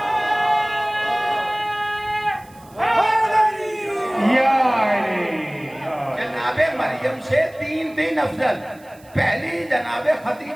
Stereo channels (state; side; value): noise; right; hiss, 28 dB below the sound